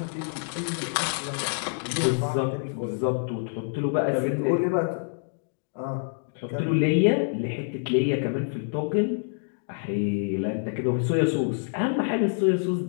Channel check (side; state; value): right; silent; digital silence